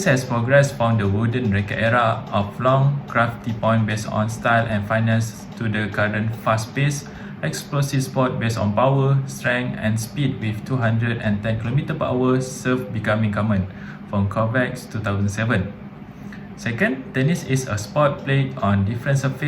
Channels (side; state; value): both; identical; correlation 1.00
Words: has progressed from the wooden racket era of long, crafty point based on style and finesse to the current fast-paced, explosive sport based on power, strength, and speed with 210 km/h serve becoming common from Kovacs 2007. Second, tennis is a sport played on different